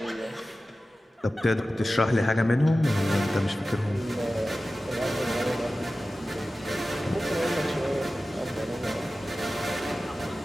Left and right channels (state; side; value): normal; both; correlation 0.95